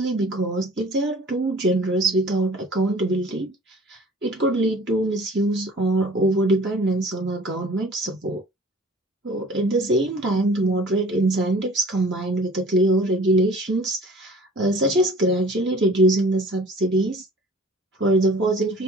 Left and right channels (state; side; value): normal; both; correlation 0.48